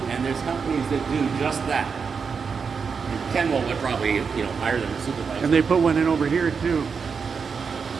and there's companies that do just that. And Ken will probably, you know, hire them to supervise. And they put one in over here too.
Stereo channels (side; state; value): left; quieter; 5.7 dB